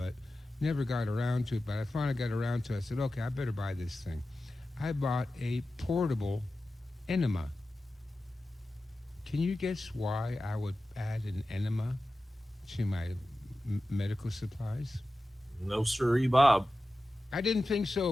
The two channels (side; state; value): both; normal; correlation 0.94